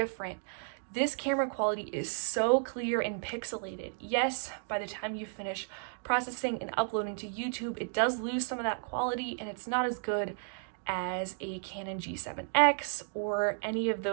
This camera quality is so clear and pixelated. Yes, by the time you finish processing and uploading to YouTube, it does lose some of that quality, and it's not as good as a Canon G7X or any of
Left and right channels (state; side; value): silent; left; digital silence